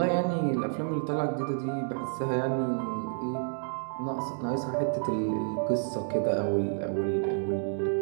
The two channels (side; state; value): left; silent; digital silence